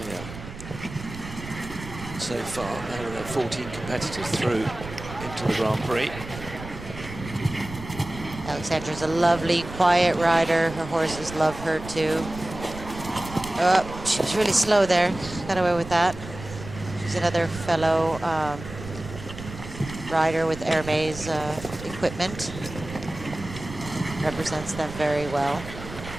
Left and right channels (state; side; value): noise; right; rumble, 12 dB below the sound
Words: so far. Now there are 14 competitors through into the Grand Prix. Alexandra's a lovely, quiet rider. Her horses love her too. Oh, she was really slow there. Got away with that. She's another fellow rider with Hermès equipment. Represents them very well.